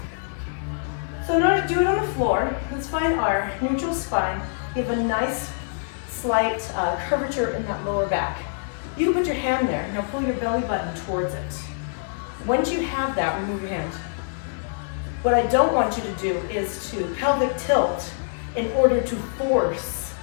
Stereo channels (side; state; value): right; silent; digital silence